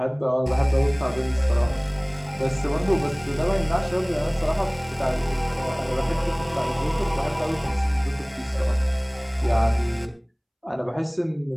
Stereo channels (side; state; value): both; identical; correlation 1.00